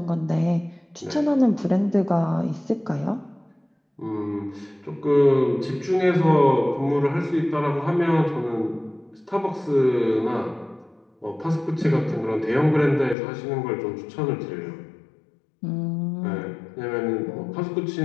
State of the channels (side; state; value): right; drops out; at 13.2 s